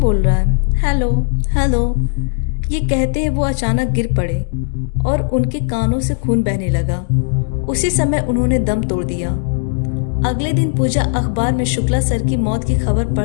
बोल रहा है? Hello hello. ये कहते हैं वो अचानक गिर पड़े और उनके कानों से खून बहने लगा। उसी समय उन्होंने दम तोड़ दिया। अगले दिन पूजा अखबार में शुक्ला सर की मौत की खबर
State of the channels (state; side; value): silent; right; digital silence